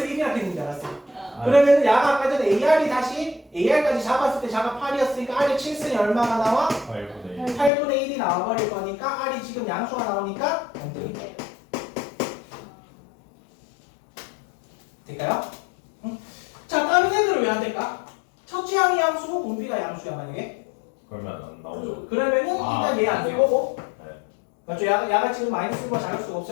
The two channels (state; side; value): drops out; right; at 7.7 s